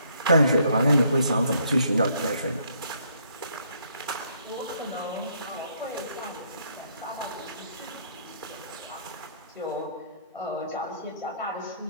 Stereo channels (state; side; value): inverted; both; correlation -0.68